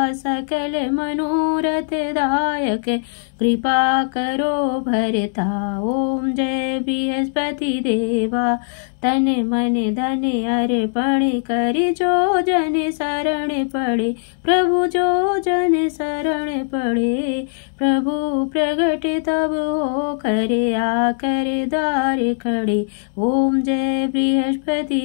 सकल मनोरथ दायक, कृपा करो भरता। ओम जय बृहस्पति देवा। तन मन धन अर्पण कर, जो जन शरण पड़े, प्रभु जो जन शरण पड़े। प्रभु प्रगट तब हो करे, आकर द्वार खड़े। ओम जय बृहस्पति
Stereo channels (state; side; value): silent; right; digital silence